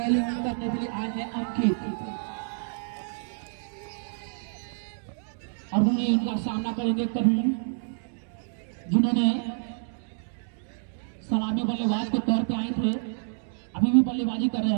करने के लिए आए हैं अंकित, और वहीं इनका सामना करेंगे करीम, जिन्होंने सलामी बल्लेबाज के तौर पे आए थे, अभी भी बल्लेबाजी कर रहे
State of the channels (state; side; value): silent; left; digital silence